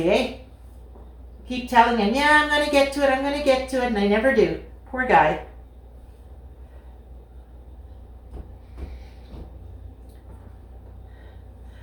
eh? Keep telling him, yeah, I'm gonna get to it, I'm gonna get to it, and I never do. Poor guy.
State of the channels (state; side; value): identical; both; correlation 1.00